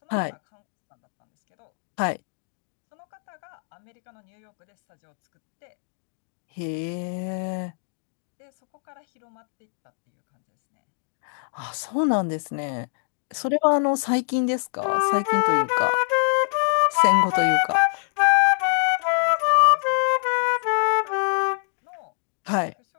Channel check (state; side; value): silent; right; 62 dB below the other